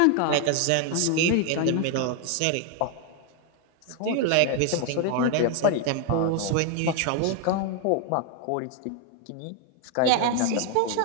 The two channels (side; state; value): both; different; correlation 0.01